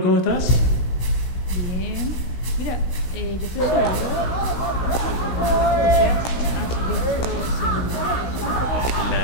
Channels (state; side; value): late; right; 16 ms